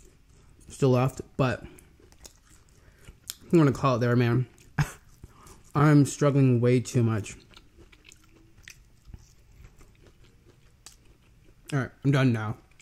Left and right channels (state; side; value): identical; both; correlation 1.00